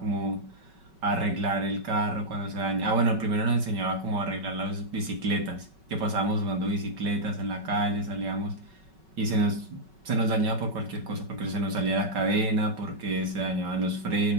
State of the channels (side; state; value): left; late; 5.3 ms